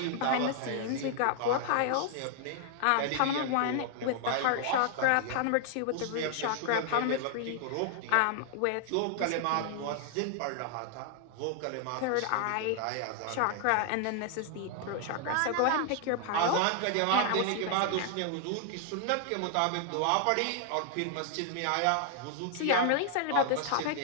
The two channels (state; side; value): different; both; correlation 0.00